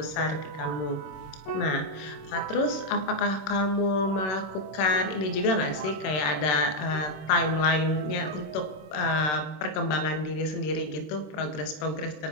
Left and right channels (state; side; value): late; right; 26 ms